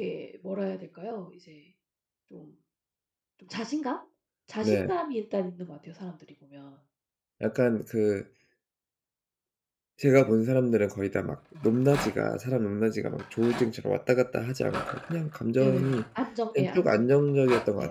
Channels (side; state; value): both; identical; correlation 1.00